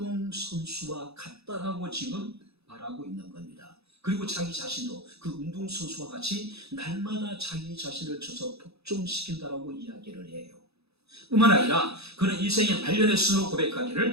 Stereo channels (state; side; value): late; left; 0.79 ms